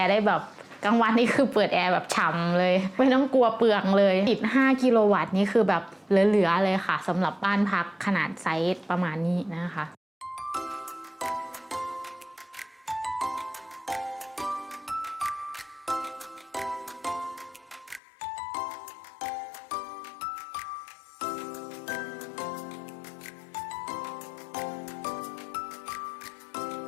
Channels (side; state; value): right; drops out; at 18.0 s